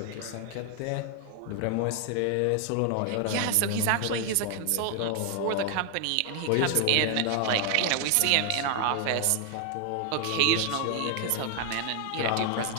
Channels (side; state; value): both; different; correlation 0.00